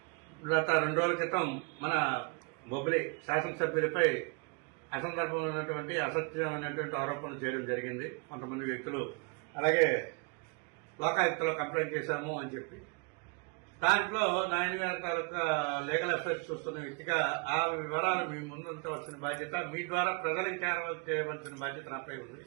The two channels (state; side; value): quieter; left; 33.4 dB